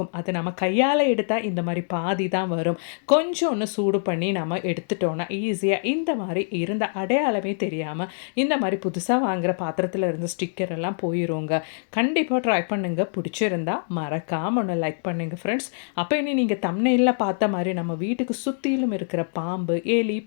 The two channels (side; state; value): right; silent; digital silence